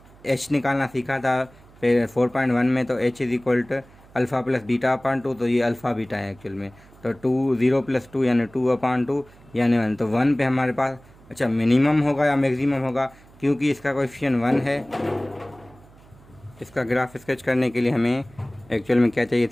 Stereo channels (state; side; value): noise; right; hum, 25 dB below the sound